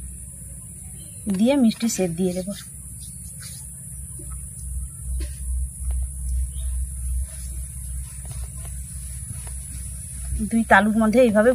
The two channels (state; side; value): identical; both; correlation 1.00